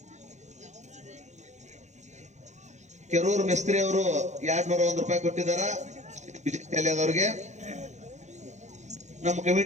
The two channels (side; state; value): left; late; 0.34 ms